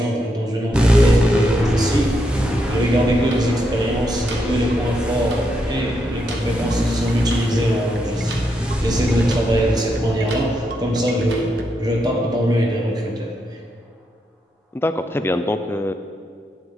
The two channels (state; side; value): normal; both; correlation 0.81